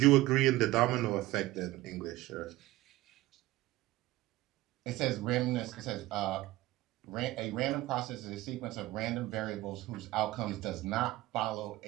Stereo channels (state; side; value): quieter; left; 17.4 dB